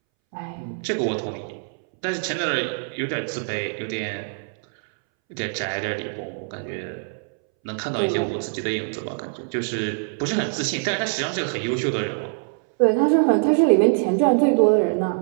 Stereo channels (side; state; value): left; silent; 63 dB below the other